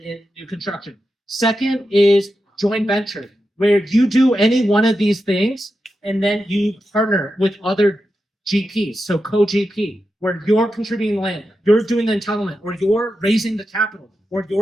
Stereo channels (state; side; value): normal; both; correlation 0.89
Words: in new construction. Second is joint venture, where you do any one of these things, and then you partner with other GPs. So co-GP, where you're contributing land, you're doing the entitlement, or you're raising the capital, or